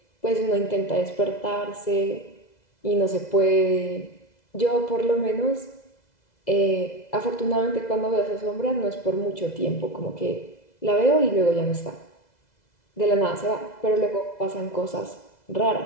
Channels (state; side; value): late; right; 2.0 ms